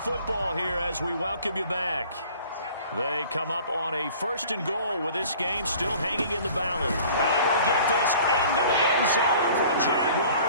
here as we welcome you back. They come up on a 1st and goal with this game still hanging in the balance. And he will get this into the end zone for a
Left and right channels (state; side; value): inverted; both; correlation -0.49